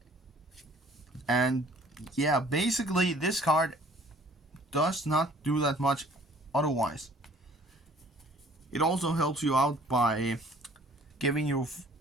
And yeah, basically this card does not do that much otherwise. It also helps you out by giving you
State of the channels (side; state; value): both; normal; correlation 0.54